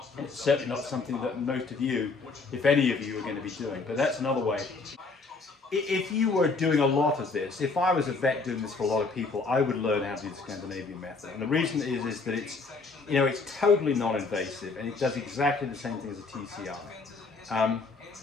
And it's certainly not something that most of you, if any of you, are going to be doing. But that's another way. If you were doing a lot of this, if I was a vet doing this for a lot of people, I would learn how to do the Scandinavian Method. And the reason is that it's totally non-invasive, and it does exactly the same thing as a TCI.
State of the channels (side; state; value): right; quieter; 4.1 dB